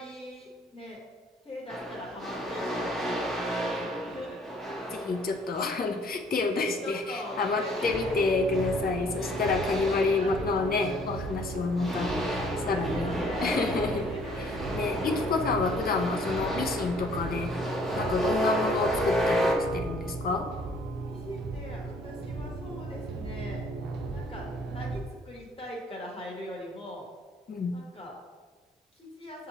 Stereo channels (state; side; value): normal; both; correlation 0.60